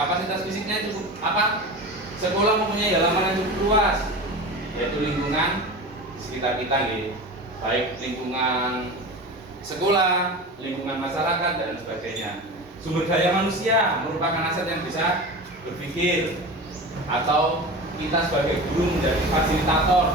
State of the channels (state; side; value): normal; both; correlation 0.31